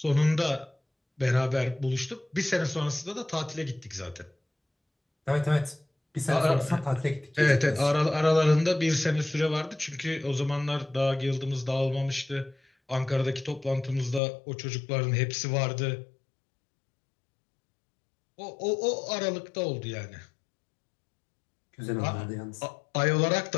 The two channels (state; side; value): drops out; right; at 14.2 s